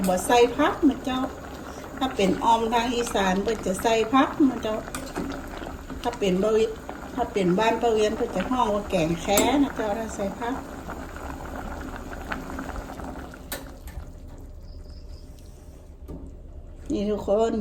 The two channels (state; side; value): identical; both; correlation 1.00